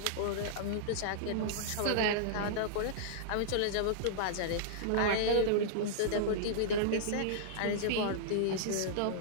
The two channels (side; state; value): both; different; correlation -0.02